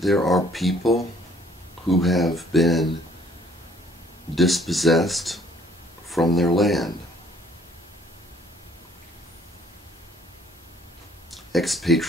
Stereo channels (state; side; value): normal; both; correlation 0.60